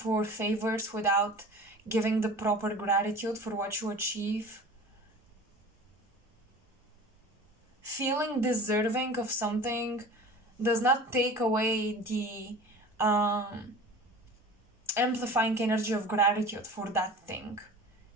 favors without giving the proper gratitude for what you achieve. Feeling deserving of something does not take away the amplifying energy of gratitude for that thing.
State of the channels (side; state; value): both; normal; correlation 0.39